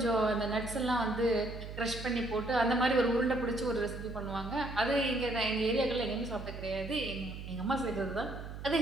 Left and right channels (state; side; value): noise; right; hum, 10 dB below the sound